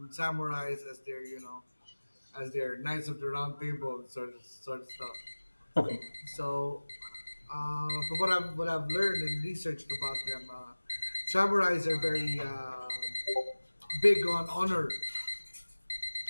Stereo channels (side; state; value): both; inverted; correlation -1.00